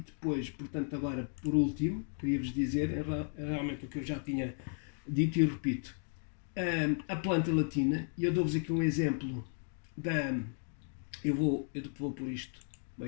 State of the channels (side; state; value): right; silent; 55 dB below the other